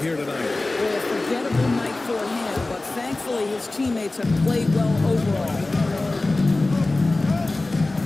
here tonight. Well, a forgettable night for him, but thankfully his teammates have played well overall.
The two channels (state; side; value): quieter; right; 3.0 dB